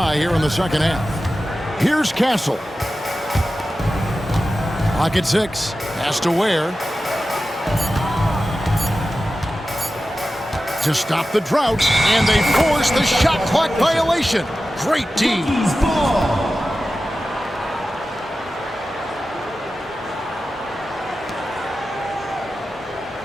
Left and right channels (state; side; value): normal; both; correlation 0.94